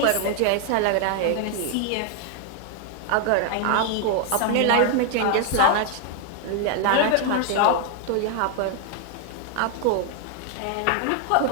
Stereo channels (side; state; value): both; different; correlation 0.00